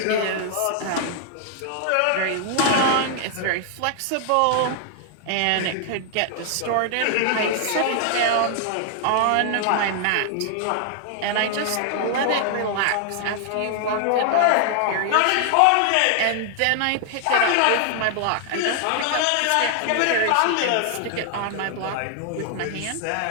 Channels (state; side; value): different; both; correlation 0.00